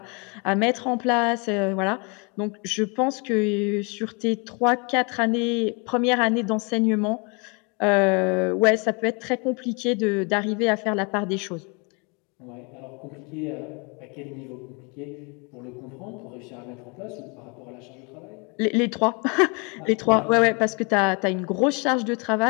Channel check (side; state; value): right; quieter; 32.0 dB